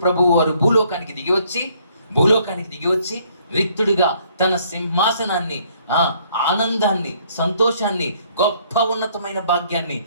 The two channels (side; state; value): both; inverted; correlation -0.64